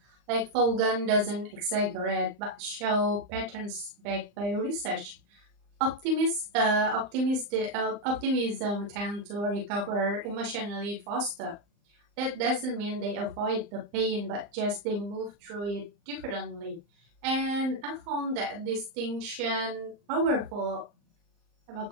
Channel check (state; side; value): late; left; 34 ms